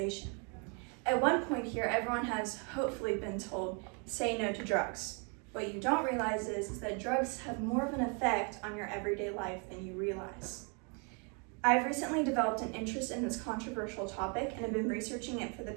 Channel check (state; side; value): quieter; left; 36.3 dB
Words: At one point here, everyone has hopefully been told, say no to drugs. What you don't realize is that drugs have more of an effect on your everyday life than you realize. I've recently developed an interest in this controversial topic and have been researching it for the